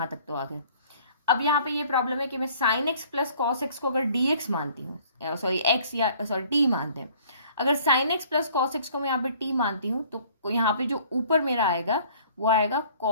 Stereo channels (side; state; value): both; inverted; correlation -0.55